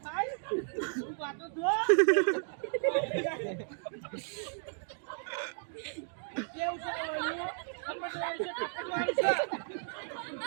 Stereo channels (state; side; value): silent; left; digital silence